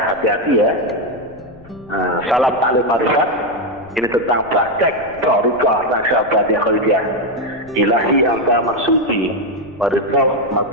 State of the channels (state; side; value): noise; left; rumble, 23 dB below the sound